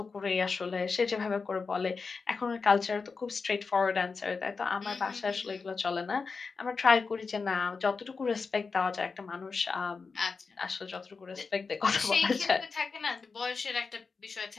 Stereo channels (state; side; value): quieter; right; 4.7 dB